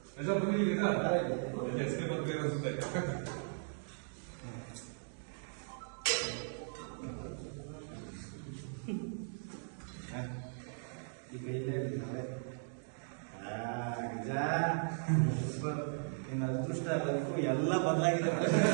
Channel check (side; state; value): left; silent; digital silence